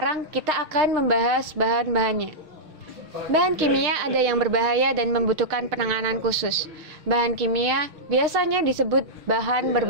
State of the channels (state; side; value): late; left; 6.5 ms